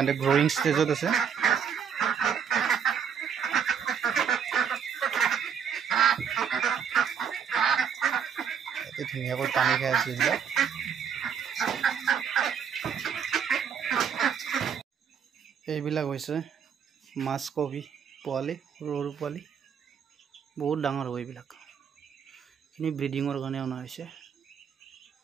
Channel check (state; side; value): quieter; left; 7.4 dB